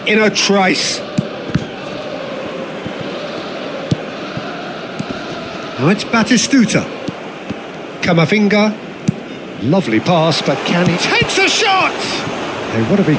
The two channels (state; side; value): identical; both; correlation 1.00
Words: in a trice. Now it's Batistuta. Camavinga. Lovely pass, but can he... Takes a shot! They want to be